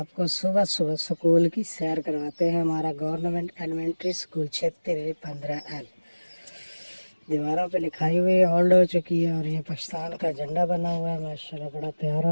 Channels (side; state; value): both; inverted; correlation -1.00